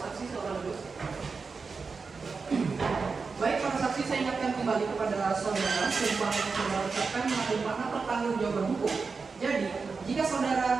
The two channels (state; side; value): quieter; left; 4.7 dB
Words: silakan duduk. Baik, para saksi saya ingatkan kembali kepada saudara sumpah yang saudara ucapkan mengandung makna pertanggungjawaban hukum. Jadi, jika